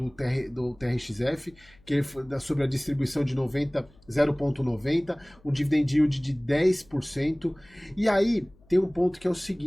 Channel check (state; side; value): noise; left; hum, 29 dB below the sound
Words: TRXF, que é sobre a distribuição de 0,90, um dividend yield de 10%. E aí tem um ponto que é o